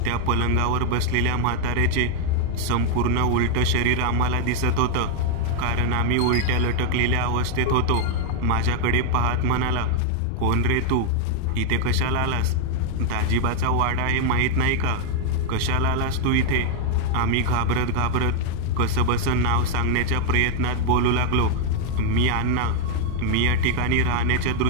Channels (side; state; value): both; different; correlation 0.01